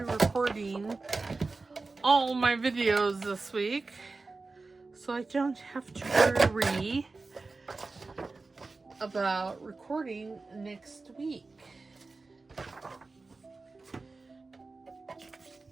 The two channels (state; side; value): quieter; left; 3.8 dB